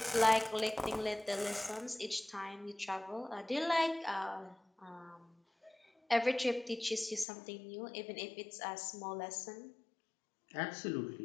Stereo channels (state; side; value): drops out; right; at 7.2 s